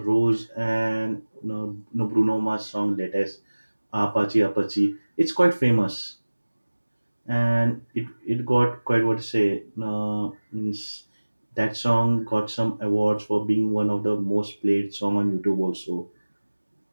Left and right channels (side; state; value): both; inverted; correlation -1.00